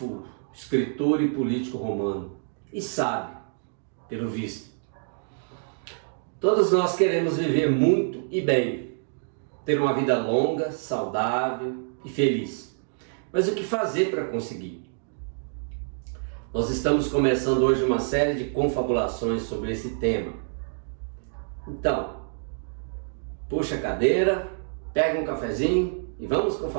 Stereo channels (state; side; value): silent; left; digital silence